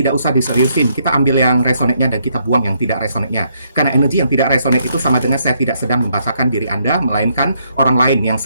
usah diseriusin. Kita ambil yang resonate-nya dan kita buang yang tidak resonate-nya. Karena energi yang tidak resonate itu sama dengan saya tidak sedang membacakan diri Anda, melainkan orang lain yang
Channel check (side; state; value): both; inverted; correlation -0.73